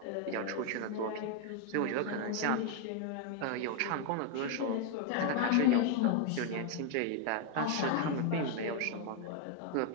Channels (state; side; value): different; both; correlation 0.00